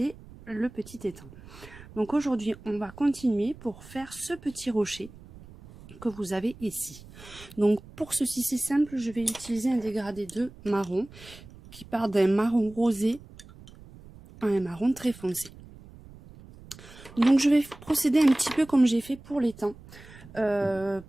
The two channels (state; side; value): noise; right; rumble, 20 dB below the sound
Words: le petit étang. Donc aujourd'hui on va continuer pour faire ce petit rocher que vous avez ici. Donc pour ceci c'est simple, je vais utiliser un dégradé de marron qui part d'un marron rosé à un marron très foncé. Donc je vais procéder un petit peu comme j'ai fait pour l'étang.